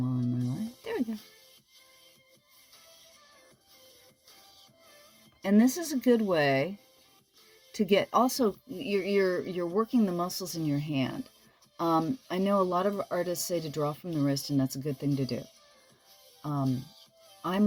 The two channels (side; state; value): both; identical; correlation 1.00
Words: on my line. There we go. And this is a good way to get, also, you're working the muscles in your hand. I know a lot of artists say to draw from the wrist, and that's a good thing to do. I'm